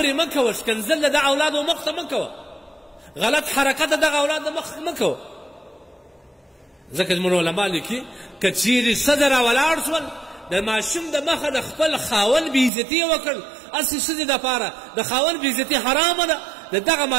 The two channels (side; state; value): left; drops out; at 12.7 s